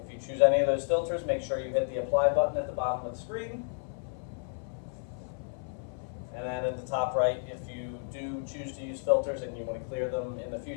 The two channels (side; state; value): right; silent; 57 dB below the other